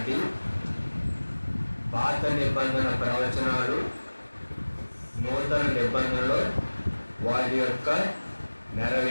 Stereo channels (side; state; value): both; inverted; correlation -1.00